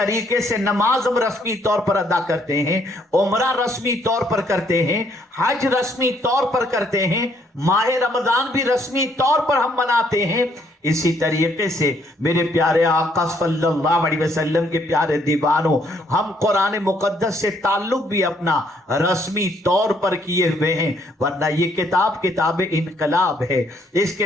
سے نماز ہم رسمی طور پر ادا کرتے ہیں، عمرہ رسمی طور پر کرتے ہیں، حج رسمی طور پر کرتے ہیں، ماہ رمضان بھی رسمی طور پر ہم مناتے ہیں، اسی طریقے سے میرے پیارے آقا صلی اللہ علیہ وسلم کے پیارے دیوانوں، ہم قرآن مقدس سے تعلق بھی اپنا رسمی طور پر کیے ہوئے ہیں، ورنہ یہ کتاب انقلاب ہے۔ اس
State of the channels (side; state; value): both; normal; correlation 0.68